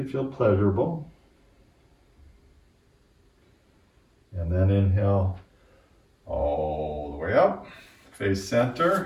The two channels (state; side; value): identical; both; correlation 1.00